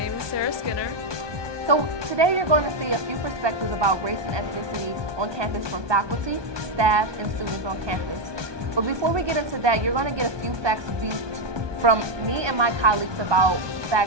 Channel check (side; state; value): left; late; 1.2 ms